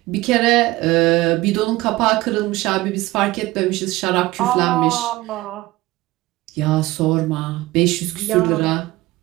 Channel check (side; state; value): left; quieter; 19.0 dB